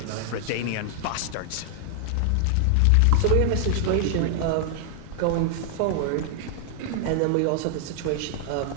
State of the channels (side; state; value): both; different; correlation 0.00